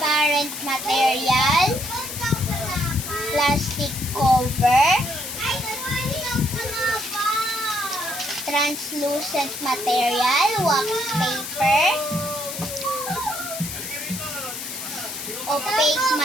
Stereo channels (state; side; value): noise; left; hiss, 7 dB below the sound